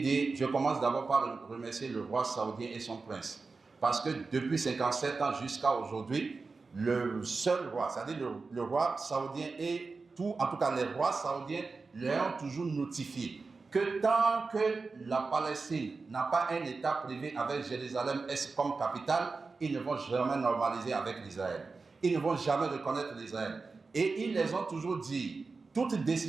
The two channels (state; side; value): quieter; left; 4.2 dB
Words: dit, je commence d'abord par remercier le roi saoudien et son prince. Parce que depuis 57 ans jusqu'à aujourd'hui, le seul roi, c'est-à-dire le roi saoudien et en tout cas les rois saoudiens, leur ont toujours notifié que tant que la Palestine n'a pas un État privé avec Jérusalem-Est comme capitale, ils ne vont jamais normaliser avec l'Israël. Ils ne vont jamais reconnaître l'Israël. Et ils les ont toujours dit, toute